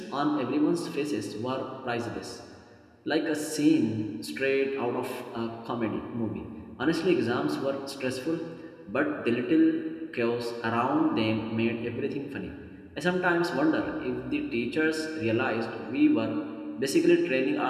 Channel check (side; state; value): both; identical; correlation 1.00